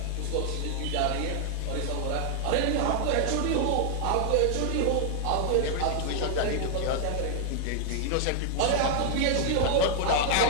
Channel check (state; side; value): different; both; correlation 0.00